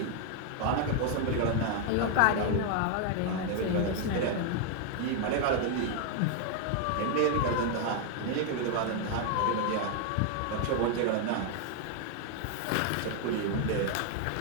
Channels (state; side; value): different; both; correlation 0.00